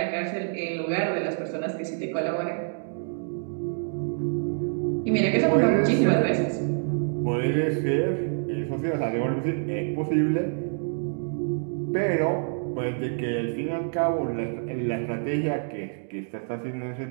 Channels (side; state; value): left; silent; 60 dB below the other